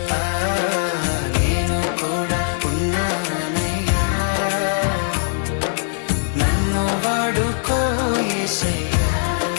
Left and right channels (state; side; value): silent; right; 65 dB below the other